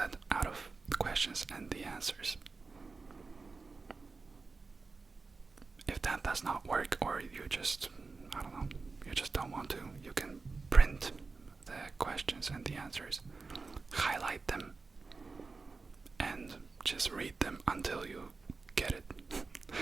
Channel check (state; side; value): quieter; left; 4.1 dB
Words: out of the questions and the answers. If that does not work, or you just, you just don't want to, you can print the questions and the answers, highlight them, and just read them until you get it.